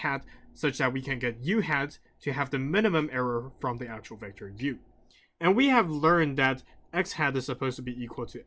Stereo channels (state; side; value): identical; both; correlation 1.00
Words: such that we can get U hat to have the minimum error from the actual vector U. And we have learned that X hat is supposed to be equal to